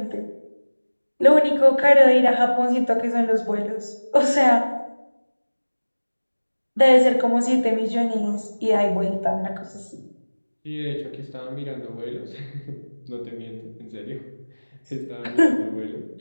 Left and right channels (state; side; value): inverted; both; correlation -1.00